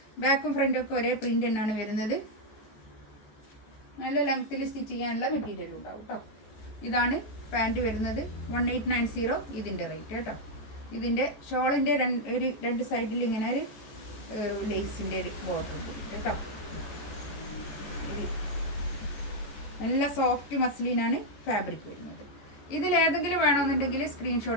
ബാക്കും ഫ്രണ്ടും ഒക്കെ ഒരേ പ്രിൻ്റ് തന്നെയാണ് വരുന്നത്. നല്ല ലെങ്ത്തിൽ സ്റ്റിച്ച് ചെയ്യാനുള്ള മെറ്റീരിയൽ ഉണ്ടാവും കേട്ടോ. ഇതാണ് പാൻറ്റ് വരുന്നത് 1890 ഇതിൻ്റെ റേറ്റ് കേട്ടോ. ഇതിൻ്റെ ഷോളിൻ്റെ ഒരു 2 സൈഡിൽ ഇങ്ങനെ ഒരു ലേസിൻ്റെ ഒരു ബോർഡർ ഉണ്ട് കേട്ടോ. നല്ല സോഫ്റ്റ് മസ്ലിനാണ് ഫാബ്രിക് വരുന്നത്. ഇതിലേതെങ്കിലും വേണമെന്നുണ്ടെങ്കിൽ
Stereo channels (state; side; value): late; right; 14 ms